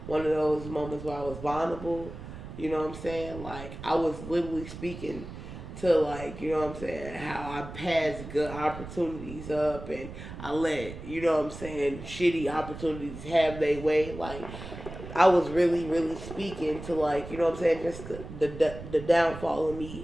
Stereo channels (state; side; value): noise; right; rumble, 12 dB below the sound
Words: one of those moments where I was vulnerable, you know what I'm saying? Like, I was literally speaking to, like, you know what I'm saying, how I passed good opportunities up and I let, you know what I'm saying, shitty opportunities have their way. Like, I was really, really speaking to, like, you know what I'm saying, just the downfall of